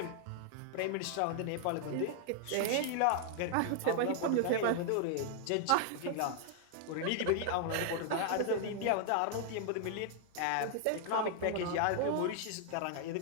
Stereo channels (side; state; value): both; different; correlation -0.01